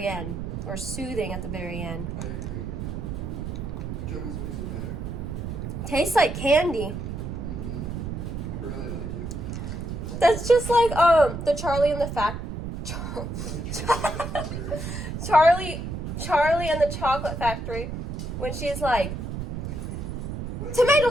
end, or soothing at the very end. I agree. Which almost makes it better. Tastes like candy. I really like it. That's just like the Charlie and the Charlie and the Chocolate Factory, when she's like, tomato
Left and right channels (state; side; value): noise; right; rumble, 5 dB below the sound